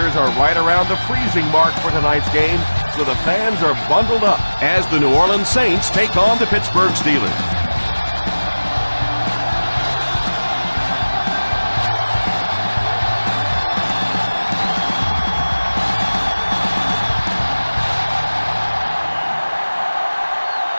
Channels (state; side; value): inverted; both; correlation -1.00